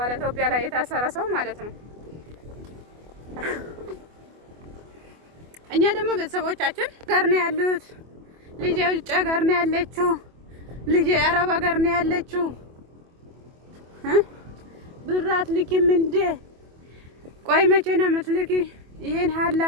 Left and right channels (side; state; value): left; late; 24 ms